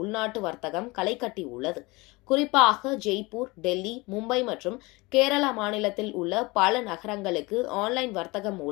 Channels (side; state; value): right; quieter; 23.9 dB